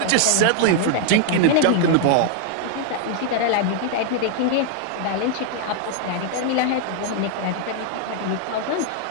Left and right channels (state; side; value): different; both; correlation 0.00